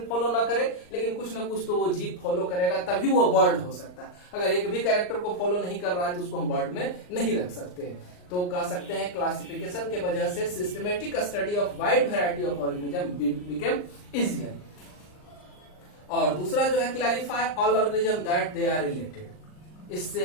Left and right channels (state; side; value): late; right; 39 ms